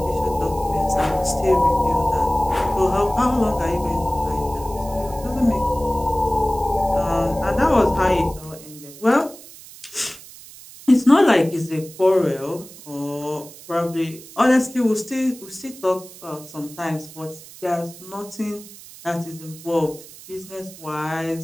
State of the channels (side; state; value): right; noise; hiss, 18 dB below the sound